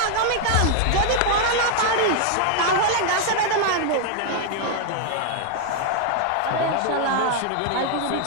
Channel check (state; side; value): different; both; correlation 0.00